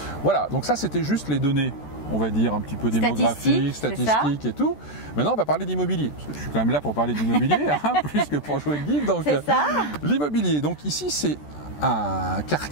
Voilà, donc ça c'était juste les données, on va dire un petit peu démographiques, statistiques et tout. Maintenant on va parler d'immobilier, parce que je suis quand même là pour parler d'immobilier, plus que pour jouer le guide. Donc l'immobilier, donc ici c'est un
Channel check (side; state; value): right; late; 14 ms